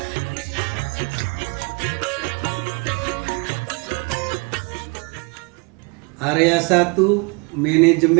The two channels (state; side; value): quieter; left; 31.0 dB